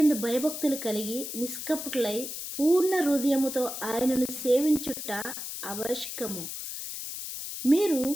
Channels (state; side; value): noise; left; hiss, 7 dB below the sound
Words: భయభక్తులు కలిగి నిష్కపటులై పూర్ణ హృదయముతో ఆయనను సేవించుట ఆవశ్యకము. మీరు